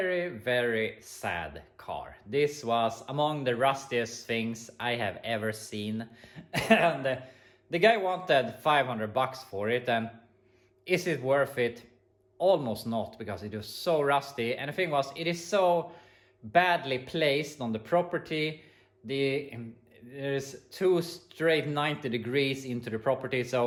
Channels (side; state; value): both; identical; correlation 1.00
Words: very sad car. This was among the rustiest things I have ever seen. And the guy wanted $500 for it, and is it worth it? Almost not, because it was so rusty. And the thing was, it is so badly placed on the property. There's two straight 90 degrees into the property,